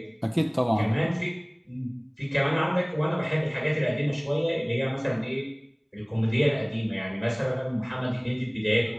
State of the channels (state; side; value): identical; both; correlation 1.00